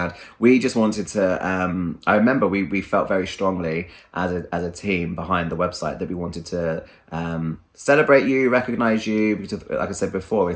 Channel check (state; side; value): identical; both; correlation 1.00